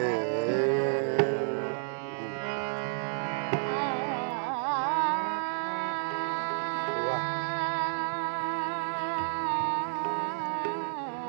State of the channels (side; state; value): left; silent; digital silence